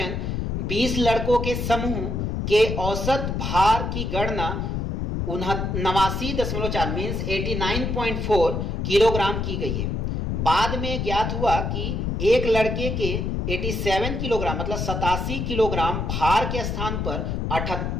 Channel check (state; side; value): noise; left; rumble, 2 dB below the sound